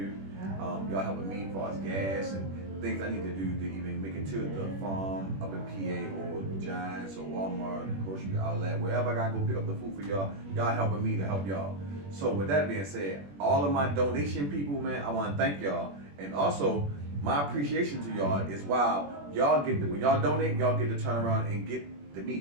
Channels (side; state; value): left; late; 21 ms